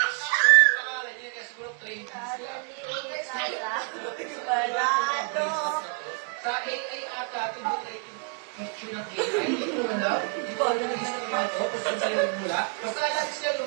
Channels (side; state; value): left; quieter; 37.9 dB